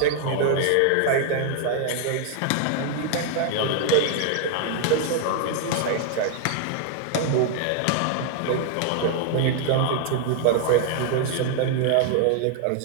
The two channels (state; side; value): different; both; correlation 0.00